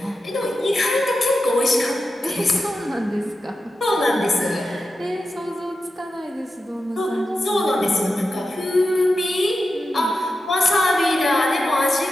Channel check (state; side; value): normal; both; correlation 0.91